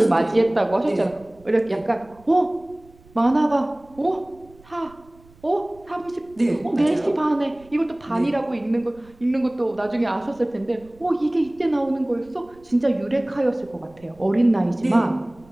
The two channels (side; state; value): right; noise; rumble, 27 dB below the sound